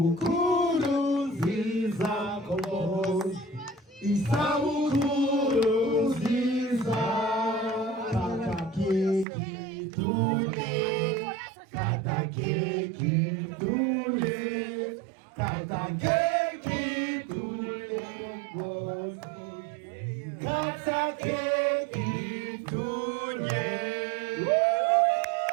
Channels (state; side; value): drops out; left; at 9.2 s